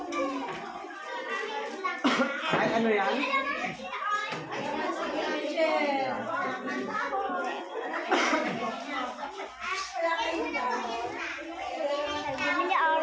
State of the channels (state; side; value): identical; both; correlation 1.00